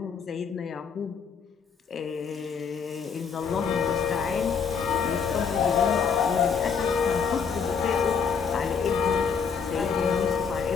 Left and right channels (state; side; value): quieter; right; 6.3 dB